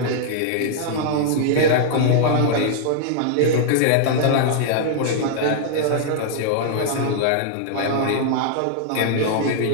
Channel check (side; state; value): both; different; correlation -0.01